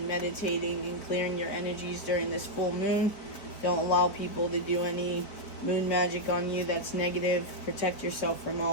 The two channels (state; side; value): late; right; 4.5 ms